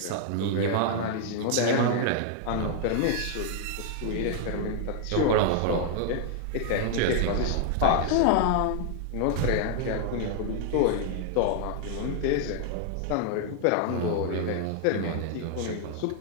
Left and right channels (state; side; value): different; both; correlation 0.00